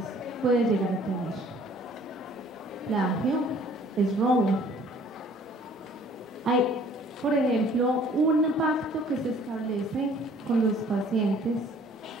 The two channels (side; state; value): both; normal; correlation 0.55